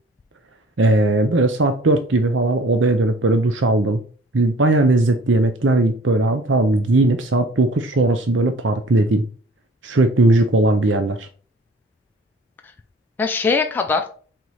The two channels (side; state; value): both; normal; correlation 0.50